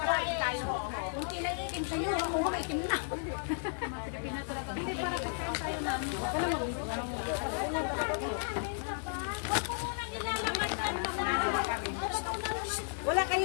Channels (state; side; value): silent; right; 55 dB below the other